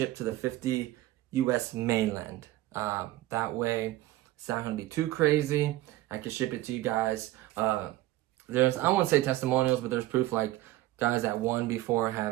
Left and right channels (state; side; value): quieter; left; 16.2 dB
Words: to the 50 US mainland. That way, it's not going to be too crazy. I can ship it to you guys. There's, I won't say testimonials, but there's proof, like guys that won before